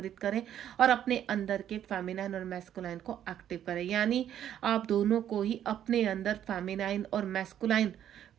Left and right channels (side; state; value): left; quieter; 10.5 dB